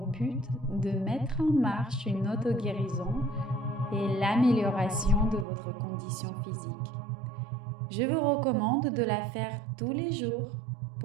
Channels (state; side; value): drops out; left; at 5.5 s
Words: but de mettre en marche une auto-guérison et l'amélioration de votre condition physique. Je vous recommande de la faire tous les jours